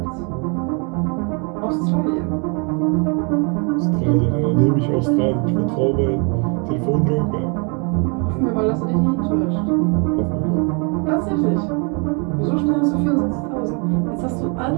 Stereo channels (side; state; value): left; quieter; 35.0 dB